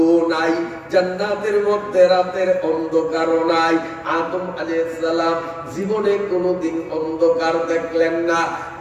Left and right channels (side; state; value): both; identical; correlation 1.00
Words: নাই, জান্নাতের মধ্যে রাতের অন্ধকারও নাই। আদম আলাইহিস সালাম জীবনে কোনোদিন অন্ধকার দেখলেন না।